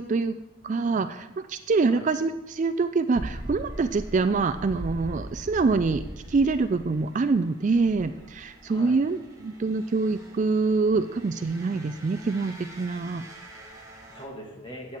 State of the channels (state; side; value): quieter; left; 3.6 dB